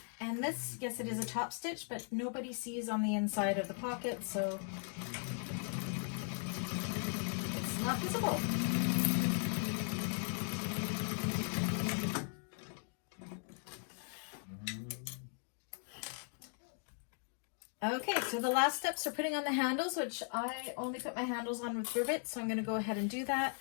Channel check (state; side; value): silent; right; 52 dB below the other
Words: And this, yes, it is a top stitch, but nobody sees on the inside of the pocket, so it's not visible. Okay, so the last steps are putting on the handles, which I only put my handles on with rivets, so I'm going to go ahead and do that.